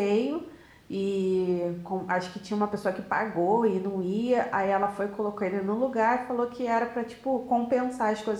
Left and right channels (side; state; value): both; identical; correlation 1.00